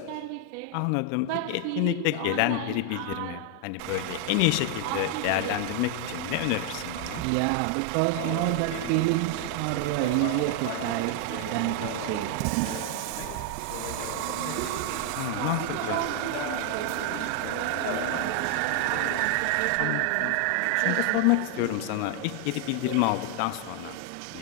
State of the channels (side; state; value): both; different; correlation 0.00